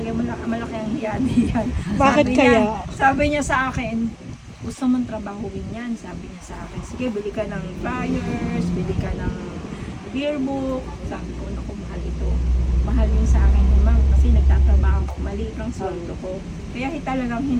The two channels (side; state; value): both; identical; correlation 1.00